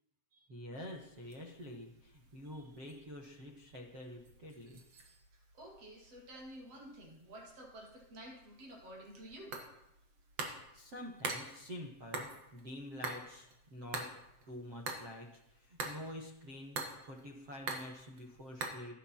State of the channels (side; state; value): left; late; 7.6 ms